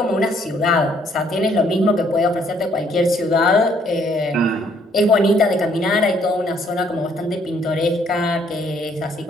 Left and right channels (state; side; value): normal; both; correlation 0.65